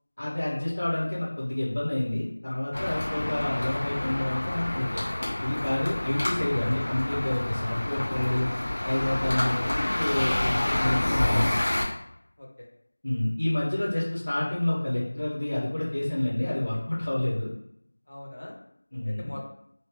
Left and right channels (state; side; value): inverted; both; correlation -1.00